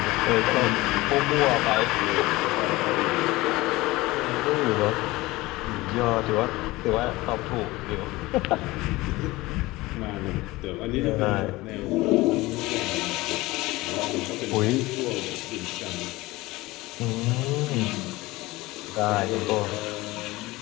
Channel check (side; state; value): right; quieter; 20.1 dB